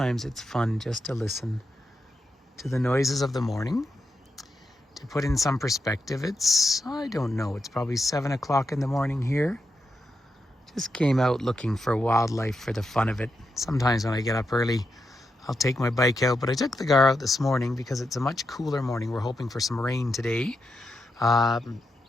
it's fun just to listen to the noises of the morning. To put in some perspective, it's, I don't know, it's probably 7 o'clock in the morning here. Just came out looking for wildlife for the fun of it. Sometimes when I get up early, I'll take my bike out, but I took the car out this morning because it's a much cooler morning. We're hoping for some rain today.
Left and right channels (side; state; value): both; normal; correlation 0.85